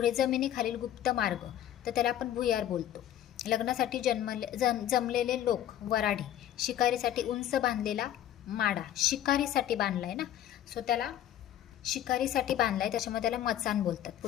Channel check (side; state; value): right; quieter; 11.4 dB